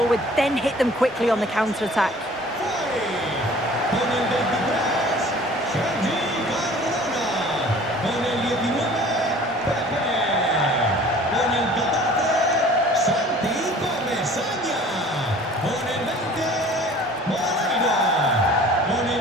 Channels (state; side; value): normal; both; correlation 0.48